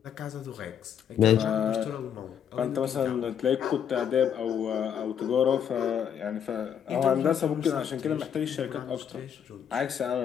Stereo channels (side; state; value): right; quieter; 8.6 dB